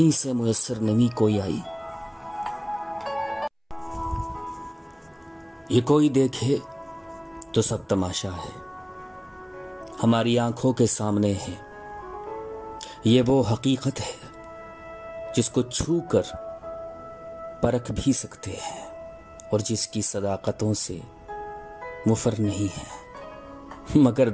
से मुयस्सर नमी कोई आई? ये कोई देखे तो सब तमाशा है, हमारी आंखों के सामने है। ये वो हकीकत है जिसको छू कर परख भी सकते हैं और जिसकी सदाकतों से मुफर नहीं है। मगर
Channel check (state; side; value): identical; both; correlation 1.00